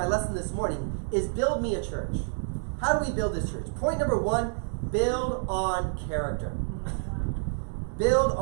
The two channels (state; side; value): silent; left; digital silence